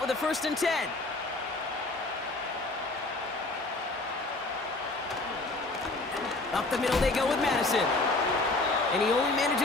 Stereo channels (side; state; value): right; quieter; 3.1 dB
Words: a 1st and 10. Up the middle they go with Madison. And he only